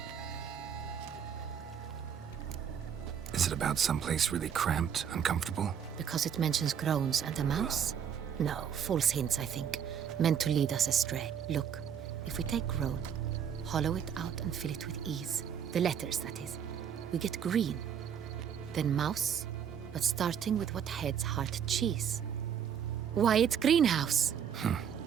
Is it about someplace really cramped, uncomfortable? Because it mentions groans and a mouse? No, false hints, I think. Meant to lead us astray. Look, if we take groan, hollow it out and fill it with ease. The letters, that is. We get green. Then mouse, but starting with what heads heart cheese. Why, it's greenhouse!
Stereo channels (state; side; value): quieter; left; 8.3 dB